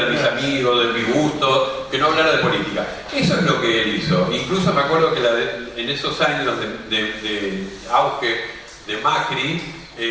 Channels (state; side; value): identical; both; correlation 1.00